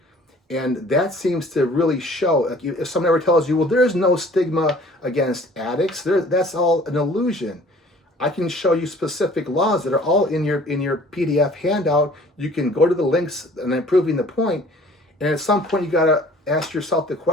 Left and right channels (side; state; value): both; normal; correlation 0.52